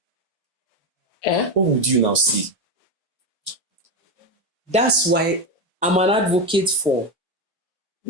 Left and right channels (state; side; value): normal; both; correlation 0.13